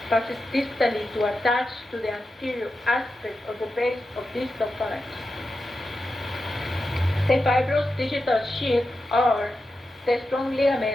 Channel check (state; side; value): normal; both; correlation 0.90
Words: passes distally to attach to the anterior aspect of the base of distal phalanx. The fibrous digital sheaths are the strong